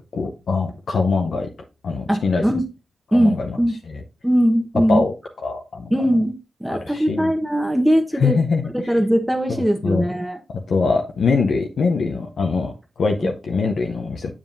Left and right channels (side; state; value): both; normal; correlation 0.92